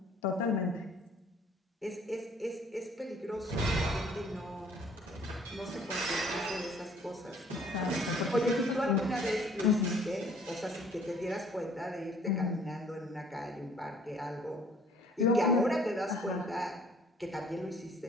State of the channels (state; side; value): normal; both; correlation 0.57